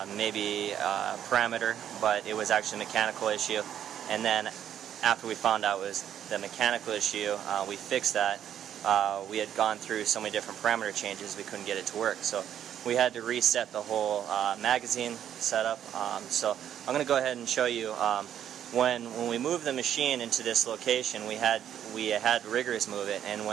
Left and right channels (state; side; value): quieter; left; 10.0 dB